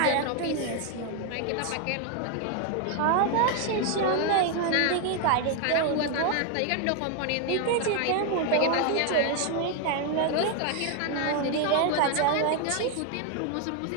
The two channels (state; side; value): different; both; correlation 0.01